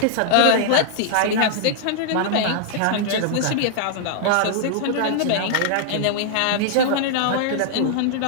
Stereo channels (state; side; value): different; both; correlation -0.01